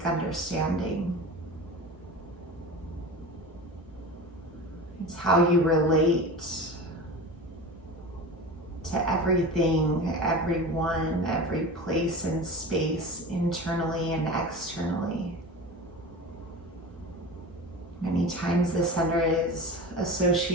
understanding. It's how you relate to everything, everyone, every place and space, internally and externally. Many times the center is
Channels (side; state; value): both; normal; correlation 0.31